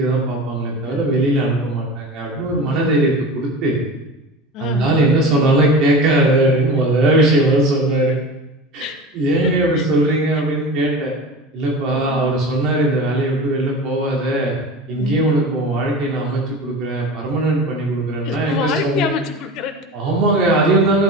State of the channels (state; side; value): normal; both; correlation 0.32